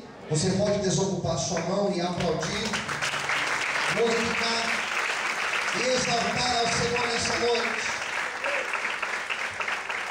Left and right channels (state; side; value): identical; both; correlation 1.00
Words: Você pode desocupar sua mão e aplaudir, glorificar e exaltar ao Senhor nessa noite.